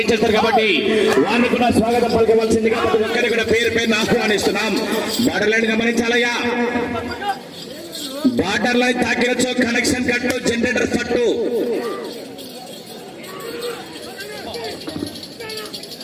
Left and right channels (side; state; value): both; identical; correlation 1.00